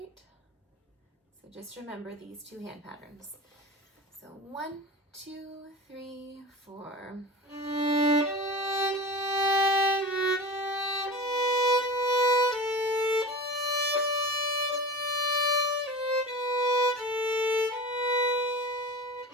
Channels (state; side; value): normal; both; correlation 0.32